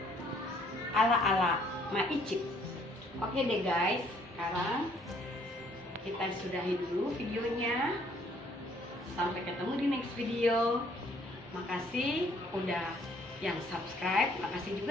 ala Ma Icip. Oke deh guys, sekarang kita sudahi dulu videonya. Sampai ketemu di next video. Makasih udah yang subscribe, makasih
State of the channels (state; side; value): normal; both; correlation 0.63